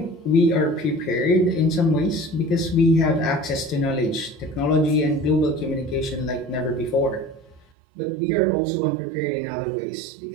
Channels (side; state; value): left; drops out; at 7.7 s